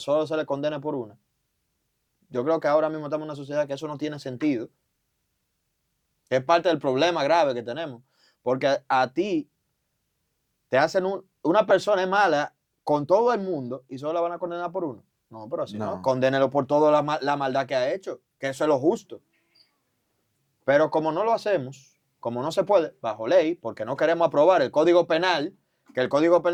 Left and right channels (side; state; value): both; identical; correlation 1.00